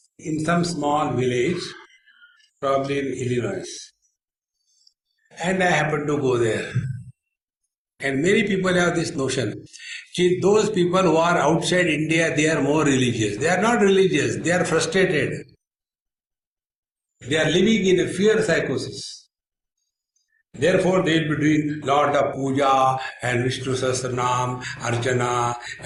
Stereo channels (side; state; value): both; identical; correlation 1.00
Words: in some small village, probably in Illinois. And I happened to go there. And many people have this notion. See, those people who are outside India, they are more religious. They are not religious, they are frustrated. They are living in a fear psychosis. Therefore, they will be doing lot of puja and Vishnu Sahasranam, Archana